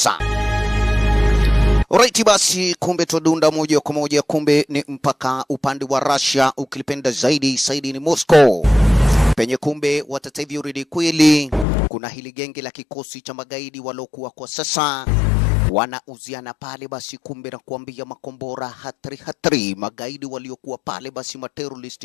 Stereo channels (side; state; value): right; drops out; at 11.7 s